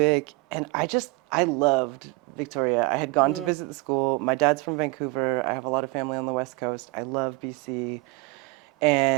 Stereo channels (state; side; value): quieter; left; 25.3 dB